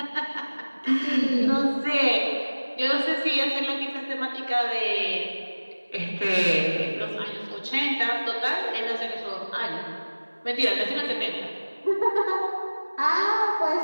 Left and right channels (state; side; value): inverted; both; correlation -1.00